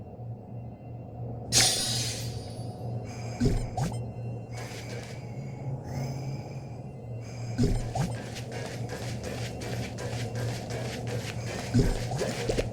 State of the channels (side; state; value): both; identical; correlation 1.00